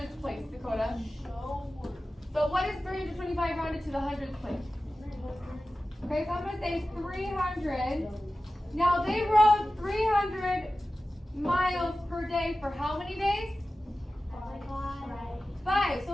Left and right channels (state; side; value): normal; both; correlation 0.95